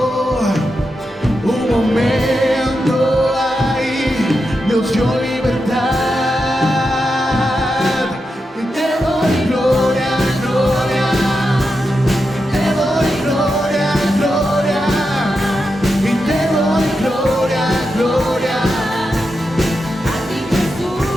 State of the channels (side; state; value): both; normal; correlation 0.87